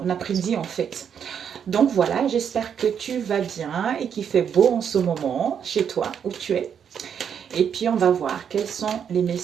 a prédit en fait. Donc voilà, j'espère que tu vas bien et qu'il fait beau en ce moment chez toi où tu es. Et puis, on va voir quels sont les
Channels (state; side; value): quieter; left; 7.9 dB